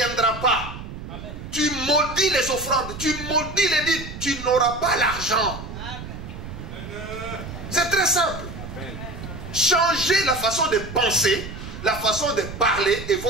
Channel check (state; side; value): noise; right; rumble, 10 dB below the sound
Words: pas. Amen. Tu maudis les offrandes, tu maudis les dîmes, tu n'auras pas l'argent. C'est très simple. Amen. Changez la façon de penser, la façon de parler et